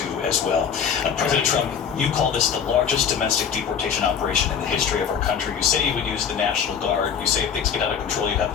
as well. President Trump, you call this the largest domestic deportation operation in the history of our country. You say you would use the National Guard. You say if things get out of control, you have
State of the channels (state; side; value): quieter; right; 7.4 dB